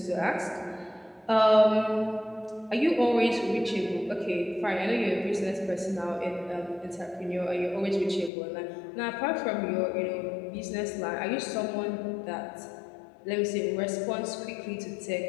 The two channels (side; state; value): right; drops out; at 8.3 s